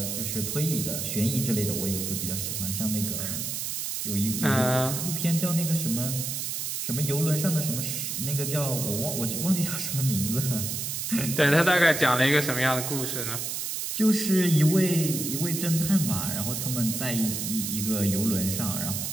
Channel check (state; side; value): noise; right; hiss, 3 dB below the sound